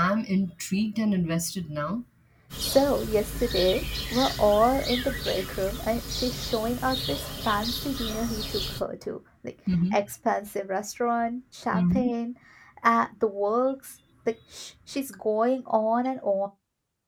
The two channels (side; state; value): both; identical; correlation 1.00